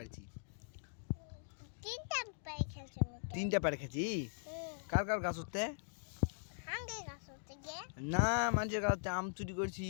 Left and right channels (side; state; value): right; silent; digital silence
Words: তিনটা পারে খেয়েছি কার কার গাছ হতে না মানুষের গাছ আম চুরি করছি